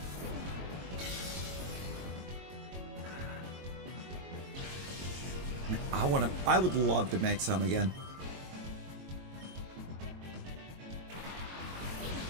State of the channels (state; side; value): late; left; 22 ms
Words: I would love to make some again.